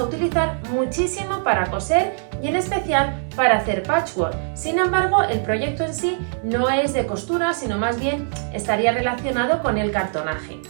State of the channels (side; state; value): left; silent; digital silence